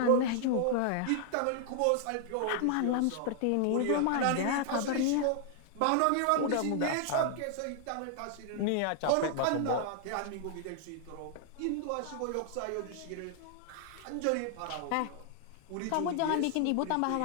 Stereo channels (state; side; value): different; both; correlation 0.00